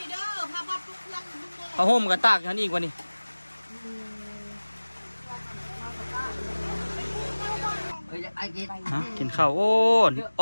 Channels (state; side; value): inverted; both; correlation -1.00